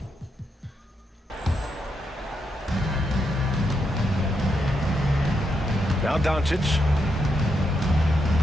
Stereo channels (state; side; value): normal; both; correlation 0.81